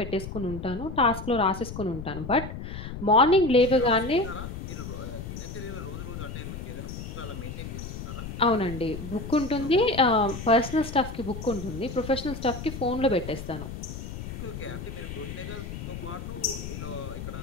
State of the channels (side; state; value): left; noise; rumble, 8 dB below the sound